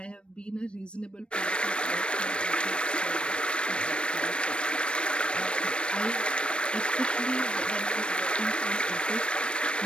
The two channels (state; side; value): late; right; 0.057 ms